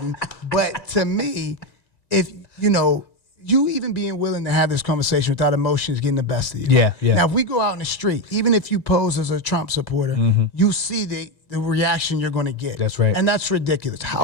But to me, if, you even being willing to have this conversation without emotions getting the best of you. Yeah. Now, if we go out in the street, even if you pose as a Trump supporter, you see the reaction you're going to get. That's right. And that's ridiculous.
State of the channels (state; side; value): late; right; 1.9 ms